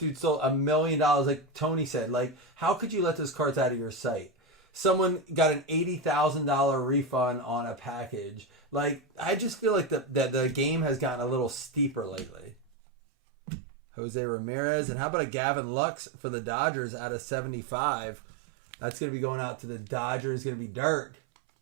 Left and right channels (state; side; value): drops out; left; at 12.7 s